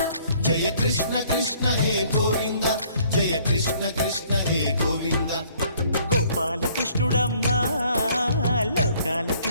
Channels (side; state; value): both; inverted; correlation -0.61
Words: జయ కృష్ణ కృష్ణ హే గోవింద జయ కృష్ణ కృష్ణ హే గోవింద గోపాలకృష్ణుడమ్మా లోకాల